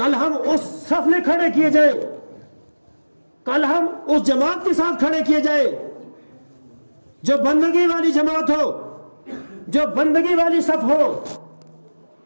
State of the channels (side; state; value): both; inverted; correlation -1.00